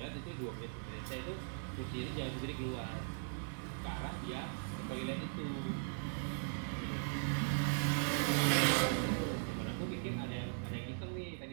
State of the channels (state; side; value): silent; left; digital silence